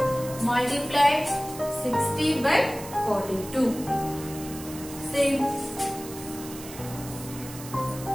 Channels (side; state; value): right; noise; hiss, 14 dB below the sound